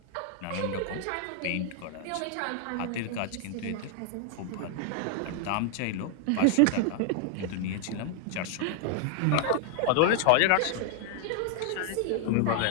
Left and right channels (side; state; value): both; different; correlation 0.00